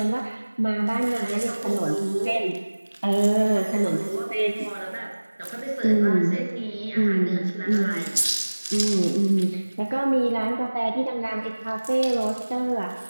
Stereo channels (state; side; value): inverted; both; correlation -1.00